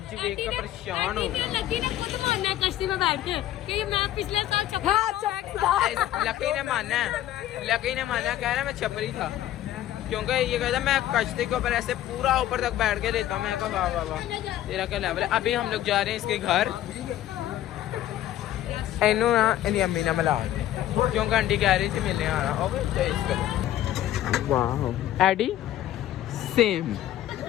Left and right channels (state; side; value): quieter; right; 12.9 dB